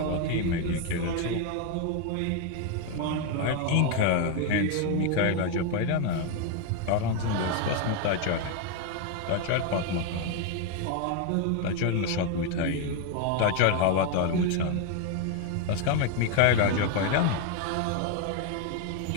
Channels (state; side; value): different; both; correlation 0.01